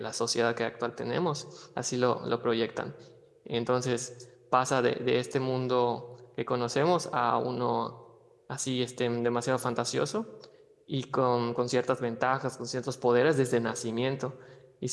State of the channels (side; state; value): both; identical; correlation 1.00